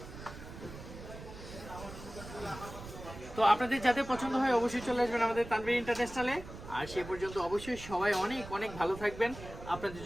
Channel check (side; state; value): right; noise; rumble, 13 dB below the sound